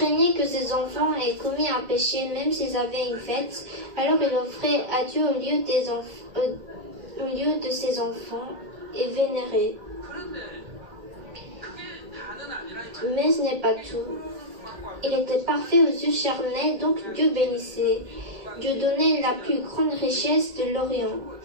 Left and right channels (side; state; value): left; late; 1.9 ms